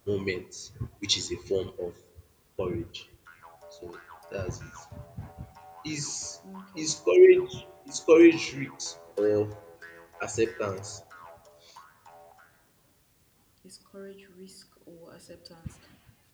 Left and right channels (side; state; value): both; identical; correlation 1.00